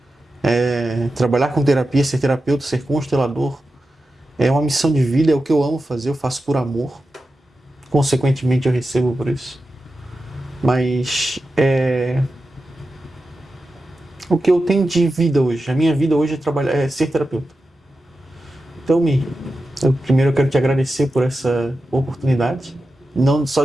Trabalhar com terapia, ser terapeuta, ser constelador, é uma missão de vida, é o que eu amo fazer, eu faço por amor. Consequentemente, eu recebo por isso. Mas o que eu tenho de vida hoje, a minha vida hoje é ser terapeuta. Então, primeiro eu quero te agradecer por essa oportunidade, não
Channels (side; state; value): both; normal; correlation 0.91